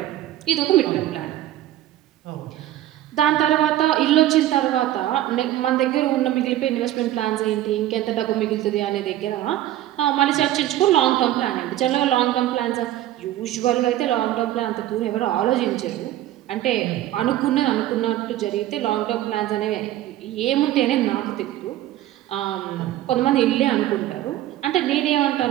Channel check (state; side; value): quieter; left; 13.8 dB